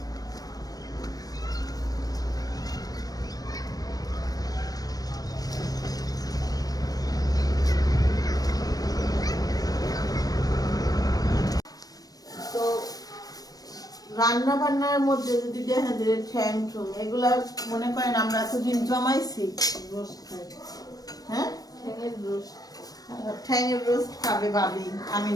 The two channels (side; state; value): right; late; 0.18 ms